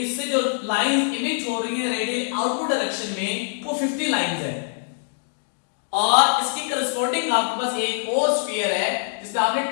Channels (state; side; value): silent; right; digital silence